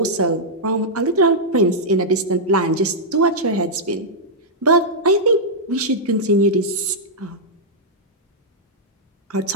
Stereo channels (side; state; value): both; normal; correlation -0.08